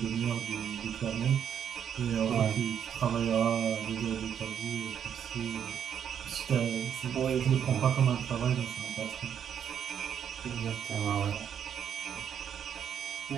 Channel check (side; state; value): left; quieter; 8.6 dB